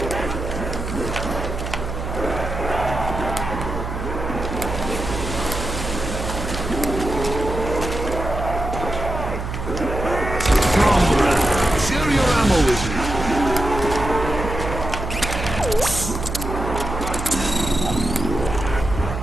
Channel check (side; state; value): right; noise; hum, 5 dB below the sound